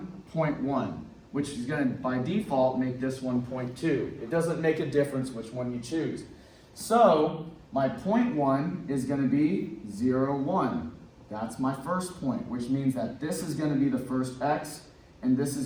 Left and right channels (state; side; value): identical; both; correlation 1.00